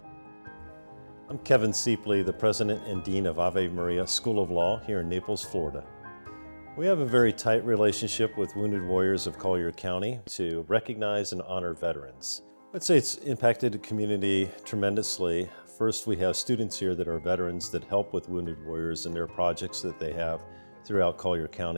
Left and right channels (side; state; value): both; inverted; correlation -1.00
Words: I'm Kevin Siepley, the President and Dean of Ave Maria School of Law here in Naples, Florida. We have a very tight relationship with Wounded Warriors of Collier County to recognize and honor veterans. I'd say it's impacted the community tremendously. First, we have students here that are veterans that help with Wounded Warriors and their projects that they have throughout Collier